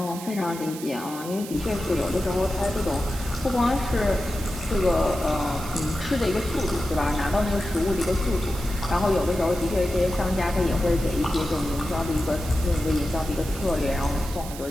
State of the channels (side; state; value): right; noise; hiss, 13 dB below the sound